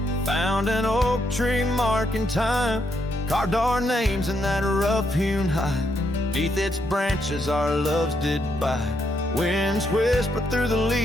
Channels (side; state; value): both; normal; correlation 0.77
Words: found an oak tree marking time, carved our names in that rough-hewn hide. Beneath its branches our loves did bide. Winds whispered through the